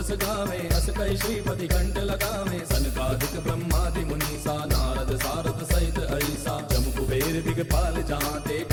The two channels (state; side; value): identical; both; correlation 1.00